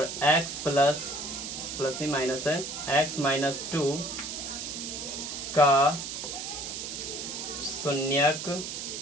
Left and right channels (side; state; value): right; noise; hiss, 6 dB below the sound